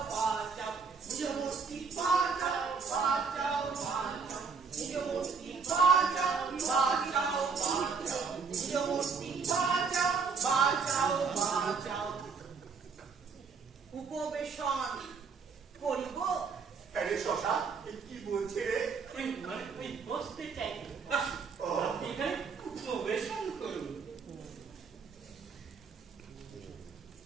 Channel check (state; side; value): quieter; left; 5.3 dB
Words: বাঁচাও নিজ মূর্তি, বাঁচাও বাঁচাও বাঁচাও নিজ মূর্তি, বাঁচাও বাঁচাও বাঁচাও নিজ মূর্তি, বাঁচাও বাঁচাও বাঁচাও। উপবেশন করিব। আরে শশা, এ কি বলছে রে? ওই মানে ওই বসতে চাই। আসুন, ও। আপনি এখানে উপবেশন করুন।